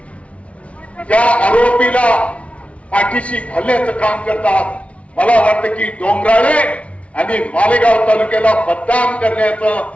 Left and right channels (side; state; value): right; late; 0.063 ms